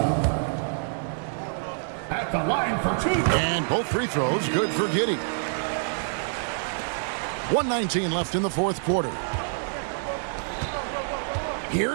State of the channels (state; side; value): silent; left; digital silence